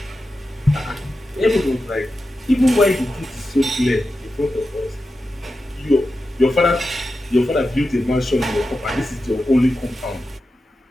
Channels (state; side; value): normal; both; correlation 0.91